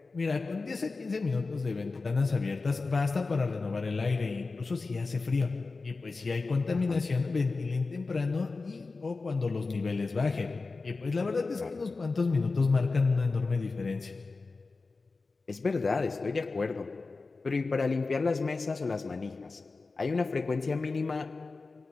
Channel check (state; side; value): quieter; right; 3.9 dB